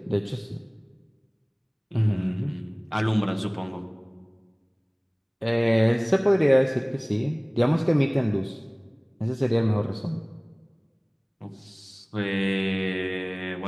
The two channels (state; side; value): identical; both; correlation 1.00